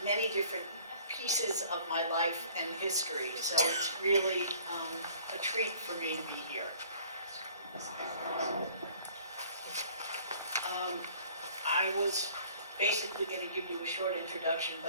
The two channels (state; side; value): inverted; both; correlation -0.53